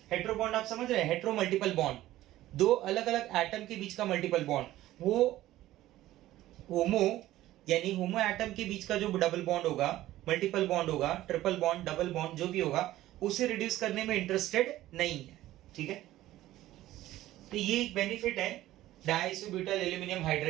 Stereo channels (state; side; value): quieter; left; 15.1 dB